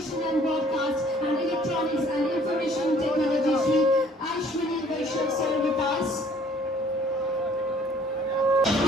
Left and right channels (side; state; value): both; normal; correlation 0.57